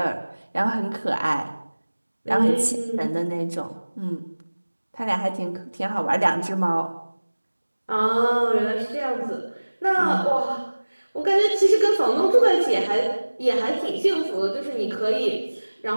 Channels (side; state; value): both; inverted; correlation -1.00